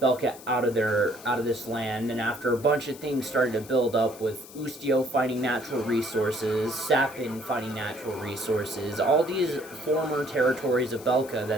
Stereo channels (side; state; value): left; noise; hiss, 18 dB below the sound